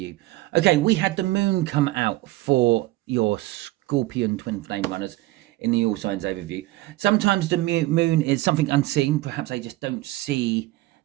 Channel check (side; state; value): left; quieter; 18.1 dB